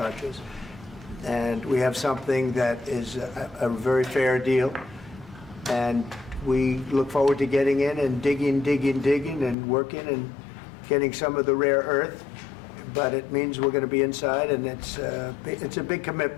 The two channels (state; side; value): drops out; right; at 9.6 s